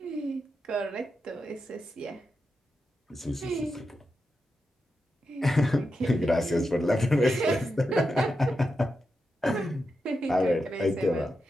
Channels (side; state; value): both; normal; correlation 0.88